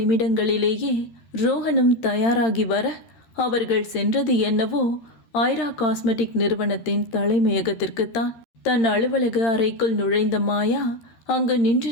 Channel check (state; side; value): late; right; 13 ms